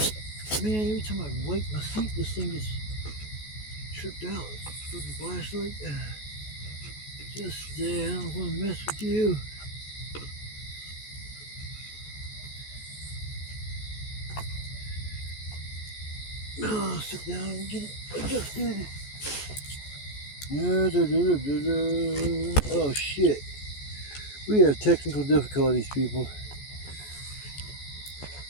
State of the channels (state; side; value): late; right; 14 ms